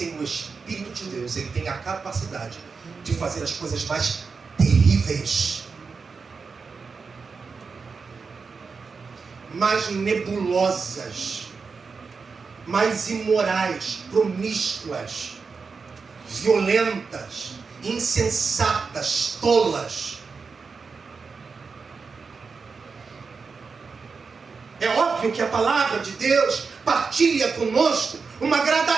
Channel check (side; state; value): left; quieter; 5.0 dB